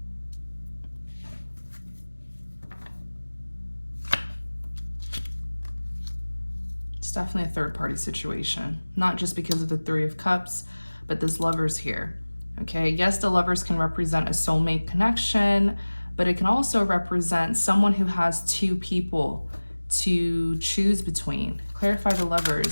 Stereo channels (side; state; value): both; inverted; correlation -1.00